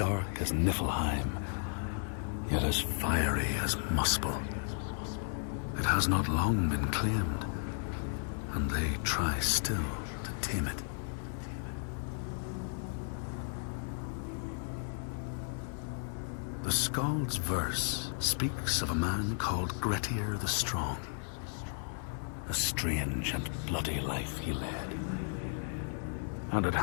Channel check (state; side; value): silent; right; 55 dB below the other